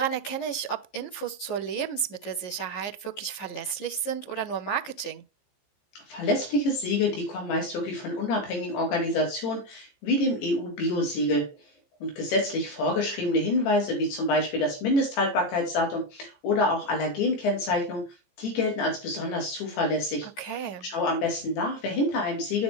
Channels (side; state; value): right; late; 15 ms